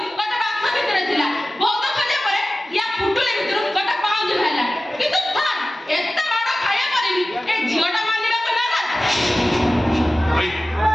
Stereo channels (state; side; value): normal; both; correlation 0.96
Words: ଗୋଟେ ବାକ୍ସ ଭିତରେ ଥିଲା। ବହୁତ ଖୋଜିବା ପରେ ୟା ପୁଟୁଳି ଭିତରୁ ଗୋଟେ ପାଉଁଜି ବାହାରିଲା। କିନ୍ତୁ ସାର୍ ଏତେ ମାଡ଼ ଖାଇବା ପରେ ବି ଏ ଝିଅଟା ମାନିବାକୁ ନାରାଜ। ଭାଇ